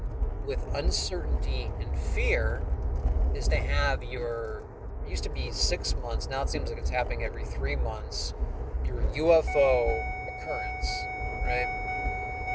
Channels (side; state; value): both; identical; correlation 1.00